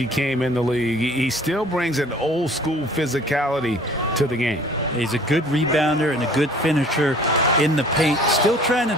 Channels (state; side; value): normal; both; correlation 0.52